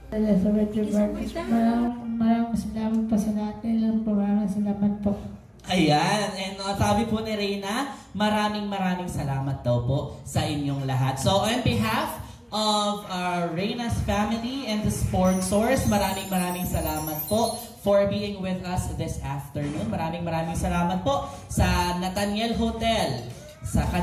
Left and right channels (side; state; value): both; identical; correlation 1.00